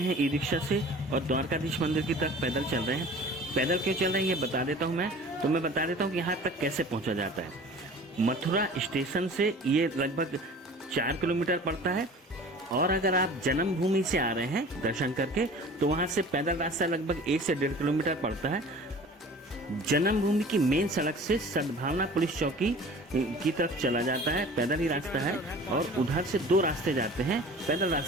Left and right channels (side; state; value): both; normal; correlation 0.43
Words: ई रिक्शा से और द्वारकाधीश मंदिर की तरफ पैदल चल रहे हैं। पैदल क्यों चल रहे हैं ये बता देता हूँ मैं बता देता हूँ कि यहाँ तक कैसे पहुँचा जाता है। मथुरा स्टेशन से ये लगभग 4 किलोमीटर पड़ता है और अगर आप जन्मभूमि से आ रहे हैं दर्शन करके तो वहाँ से पैदल रास्ता लगभग 1 से 1.5 किलोमीटर पड़ता है। जन्मभूमि की मेन सड़क से सद्भावना पुलिस चौकी की तरफ चला जाता है, पैदल ही रास्ता है और उधर से 2 रास्ते जाते हैं। पैदल